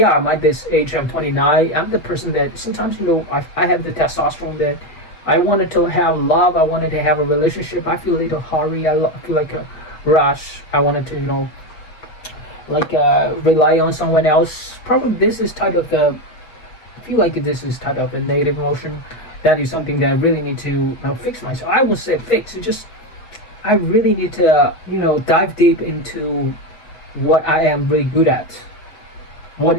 at this age, I'm 29. I'm the person that sometimes, I have the testosterone that I wanted to have love. I wanted to have a relationship. I feel a little hurry. I feel like a rush. I wanted to, rely on someone else. Probably this is type of I feel like this is type of a negative emotion. That is something that I really need to fix myself. I won't say fix. I really need to, dive deep into what I am really good at. What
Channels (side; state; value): right; late; 6.4 ms